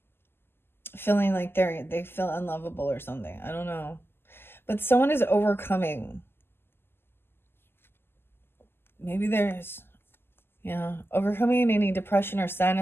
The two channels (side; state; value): right; late; 0.11 ms